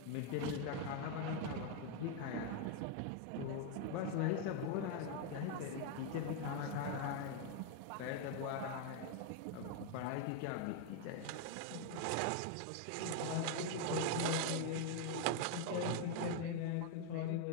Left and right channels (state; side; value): different; both; correlation 0.00